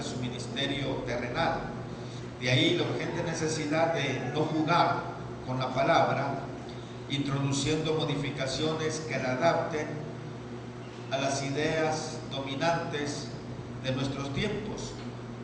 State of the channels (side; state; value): both; identical; correlation 1.00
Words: ministerio terrenal. De ahí la urgente necesidad de no jugar con la palabra, introduciendo modificaciones que la adapten a las ideas dominantes de nuestros tiempos.